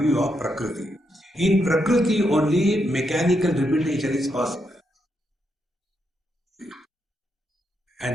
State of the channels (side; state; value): both; normal; correlation 0.81